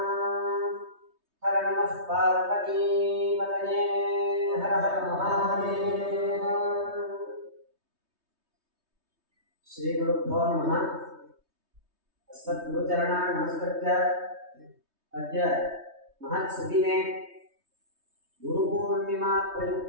हर नमः पार्वतीपतये हर हर महादेव। श्री गुरुभ्यो नमः। अस्मद्गुरुचरणान् नमस्कृत्य अद्य महत्सुदिने गुरुपूर्णिमा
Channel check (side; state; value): left; late; 3.2 ms